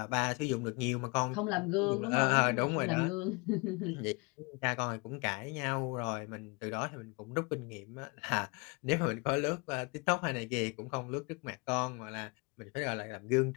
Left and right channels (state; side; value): quieter; right; 29.6 dB